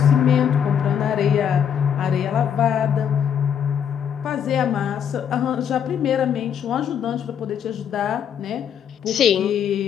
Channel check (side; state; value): right; quieter; 8.4 dB